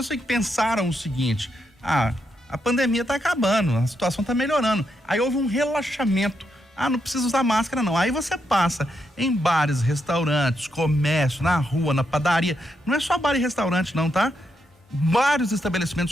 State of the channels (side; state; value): both; normal; correlation 0.81